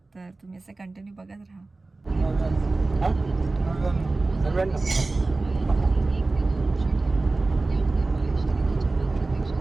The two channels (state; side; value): quieter; left; 3.3 dB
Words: तर तुम्ही असं कंटिन्यू बघत राहा.